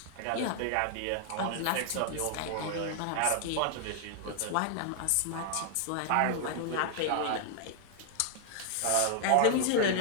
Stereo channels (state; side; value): different; both; correlation 0.00